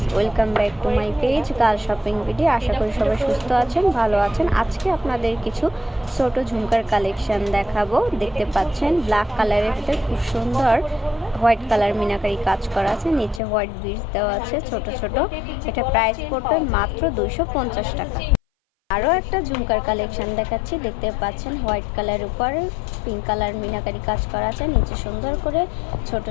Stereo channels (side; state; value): right; drops out; at 13.4 s